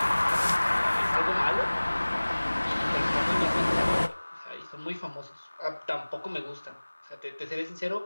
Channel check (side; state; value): both; inverted; correlation -1.00